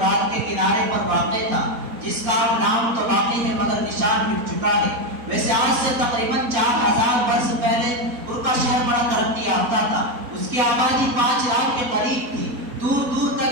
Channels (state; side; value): late; left; 4.1 ms